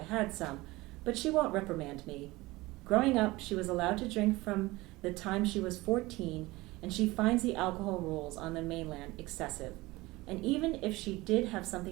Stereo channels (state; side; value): quieter; left; 20.6 dB